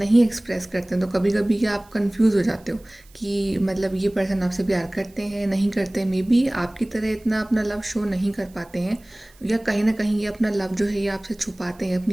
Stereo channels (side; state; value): right; noise; hiss, 29 dB below the sound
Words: एक्सप्रेस करते हैं। तो कभी कभी क्या आप कंफ्यूज हो जाते हो कि मतलब ये पर्सन आपसे प्यार करते हैं नहीं करते, मे बी आपकी तरह इतना अपना लव शो नहीं कर पाते हैं, या कहीं ना कहीं ये अपना लव जो है ये आपसे छुपाते हैं,